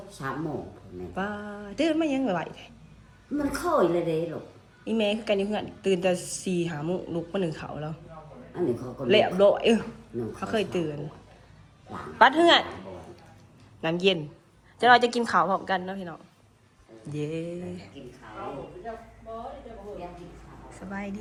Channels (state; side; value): identical; both; correlation 1.00